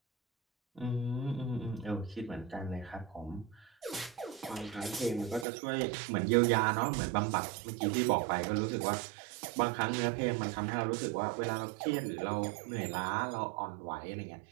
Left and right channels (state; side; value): drops out; left; at 5.5 s